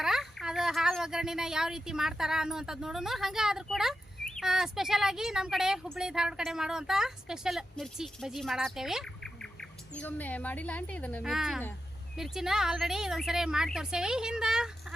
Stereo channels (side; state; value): both; normal; correlation 0.89